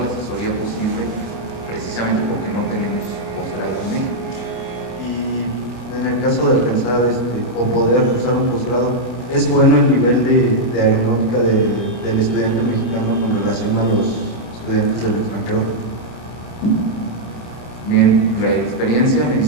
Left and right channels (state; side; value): late; right; 25 ms